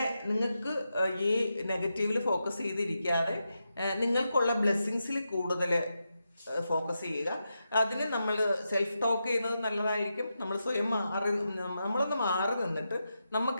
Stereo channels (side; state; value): both; inverted; correlation -0.87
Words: നിങ്ങൾക്ക് ഈ നെഗറ്റീവിൽ ഫോക്കസ് ചെയ്തിരിക്കാതെ നിങ്ങൾക്കുള്ള ബ്ലെസ്സിങ്സിൽ കൂടുതൽ ഫോക്കസ് ചെയ്യുക. അതിന് നമ്മൾ സെൽഫ് ടോക്ക് ചെയ്യുന്നത് നല്ലതായിരിക്കും. നമ്മൾ സ്വയം നമ്മളൊന്ന് മാറി നിന്നിട്ട്